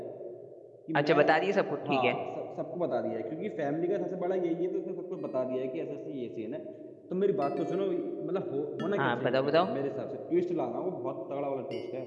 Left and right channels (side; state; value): both; identical; correlation 1.00